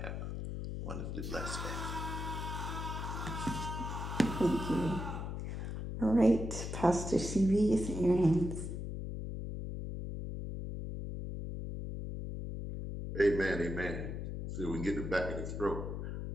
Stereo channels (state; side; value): noise; left; hum, 5 dB below the sound